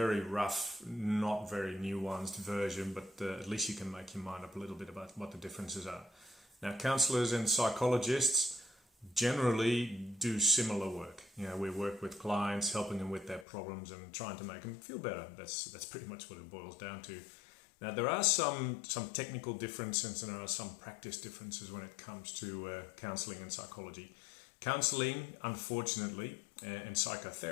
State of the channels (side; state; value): right; drops out; at 13.5 s